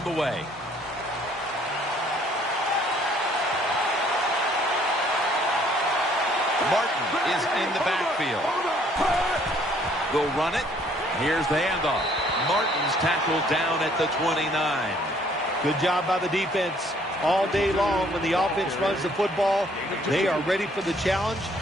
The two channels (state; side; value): normal; both; correlation 0.62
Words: the way. Martin is in the backfield. They'll run it. Here's the handoff. Martin's tackled down at the 29. Good job by the defense. All day long when the offense runs the football, they are ready for the challenge